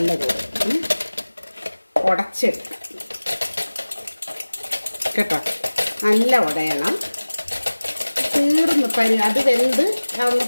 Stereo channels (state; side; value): inverted; both; correlation -1.00